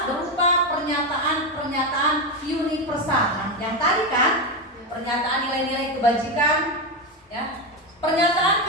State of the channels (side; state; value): both; normal; correlation 0.12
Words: berupa pernyataan-pernyataan universal. Nah, yang tadi kan pernyataan nilai-nilai kebajikan, ya. Pernyataan